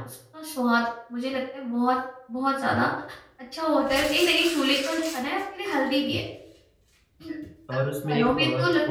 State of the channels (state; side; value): identical; both; correlation 1.00